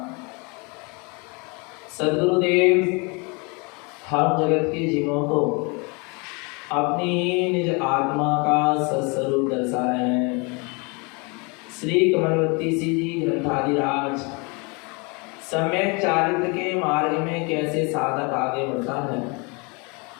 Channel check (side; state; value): right; quieter; 30.7 dB